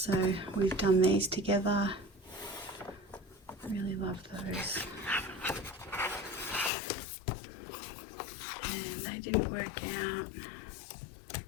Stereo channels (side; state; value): right; drops out; at 6.7 s